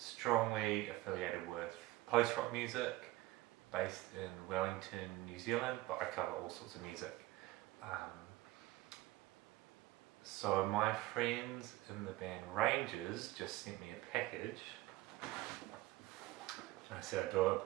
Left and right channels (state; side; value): quieter; left; 18.3 dB